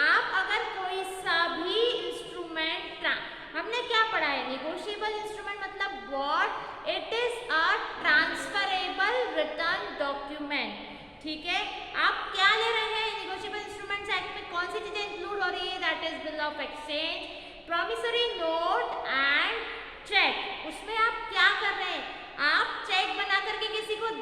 आप अगर कोई सा भी इंस्ट्रूमेंट, हमने क्या पढ़ा है? नेगोशिएबल इंस्ट्रूमेंट मतलब what? It is a transferable return document. ठीक है, आप क्या ले रहे हैं? नेगोशिएबल इंस्ट्रूमेंट्स एक्ट में कौन सी चीजें इंक्लूड हो रही है? That is bill of exchange, promissory note and cheque. उसमें आप क्या कर रहे हैं? आप चेक बना करके किसी को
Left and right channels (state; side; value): identical; both; correlation 1.00